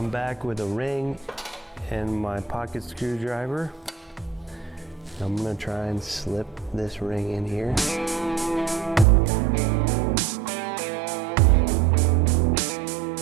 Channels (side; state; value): left; drops out; at 9.1 s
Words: back with a ring and my pocket screwdriver. I'm gonna try and slip this ring in here.